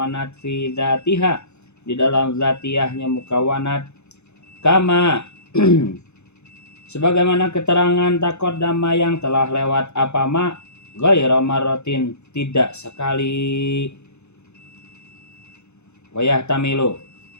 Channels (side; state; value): right; late; 0.81 ms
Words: fi zatiha di dalam zatiyahnya mukawanat kama sebagaimana keterangan taqaddama yang telah lewat apa ma ghairu marratin tidak sekali wayah tamilu